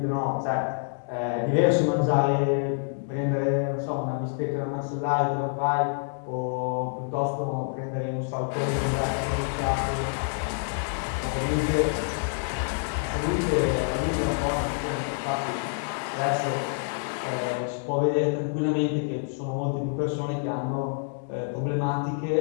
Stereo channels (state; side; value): silent; right; digital silence